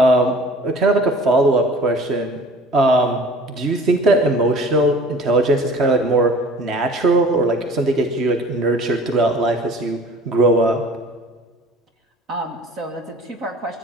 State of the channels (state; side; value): normal; both; correlation 0.47